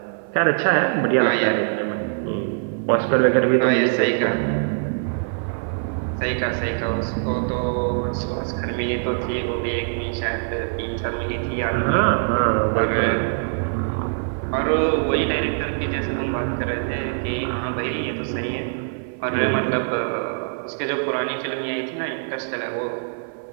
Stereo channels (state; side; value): silent; left; 56 dB below the other